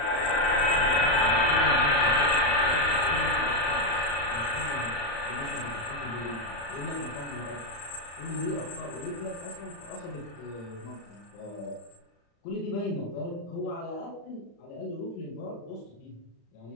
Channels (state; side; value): late; right; 35 ms